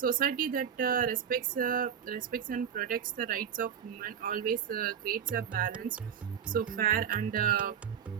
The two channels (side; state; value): left; quieter; 8.2 dB